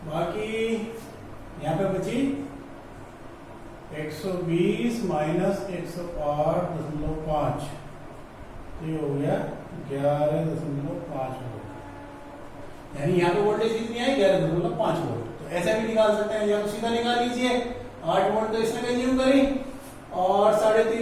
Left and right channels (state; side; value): identical; both; correlation 1.00